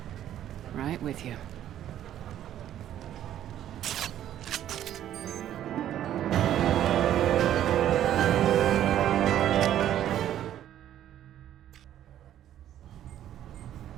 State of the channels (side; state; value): left; quieter; 11.4 dB